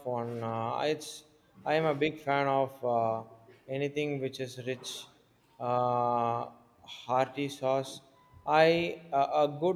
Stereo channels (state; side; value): identical; both; correlation 1.00